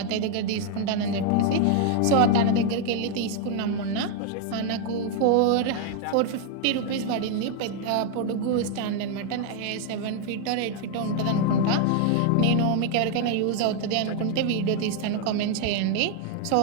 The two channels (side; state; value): both; different; correlation 0.00